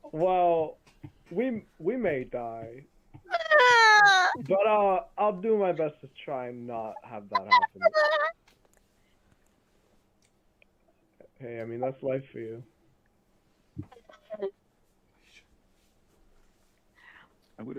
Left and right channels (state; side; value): identical; both; correlation 1.00